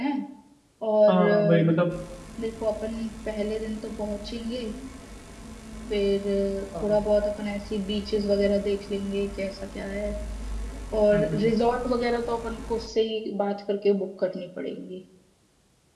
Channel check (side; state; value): both; identical; correlation 1.00